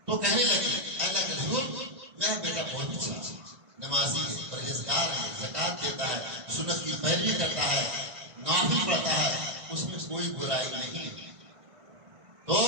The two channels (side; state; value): left; late; 1.5 ms